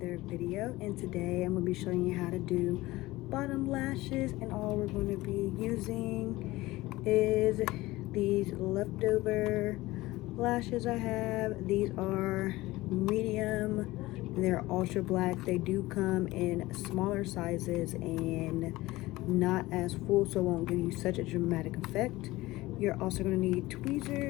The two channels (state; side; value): quieter; right; 18.9 dB